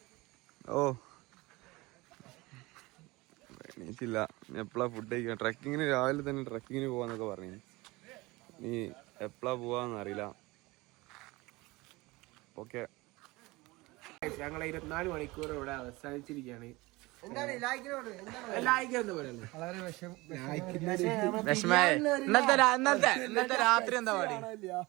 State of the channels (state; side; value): quieter; left; 22.1 dB